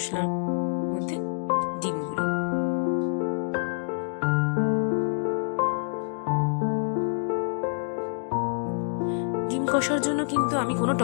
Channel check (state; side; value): silent; right; digital silence